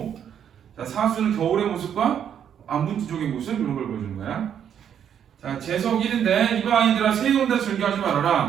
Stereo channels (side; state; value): left; quieter; 8.9 dB